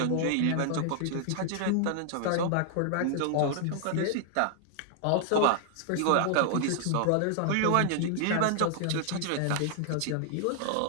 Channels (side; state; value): both; different; correlation 0.00